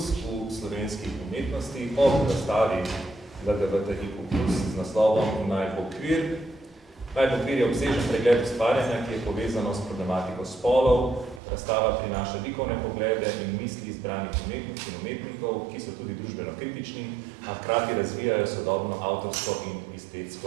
slovenskih umetnosti ob razstavi LGBTIQ+ z naslovom Naj bo kvir. Naj bo kvir je obsežen pregled ustvarjanja, ki je povezano s problematiko spolov. Razstava prinaša likovne poglede in misli izbranih umetnic in umetnikov, ki so tudi družbeno kritični, a hkrati razvijajo sodobno avtorsko in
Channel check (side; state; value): left; drops out; at 11.4 s